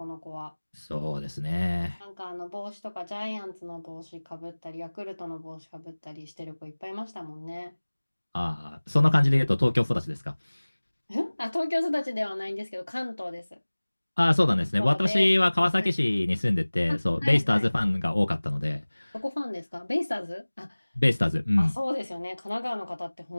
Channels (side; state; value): both; inverted; correlation -1.00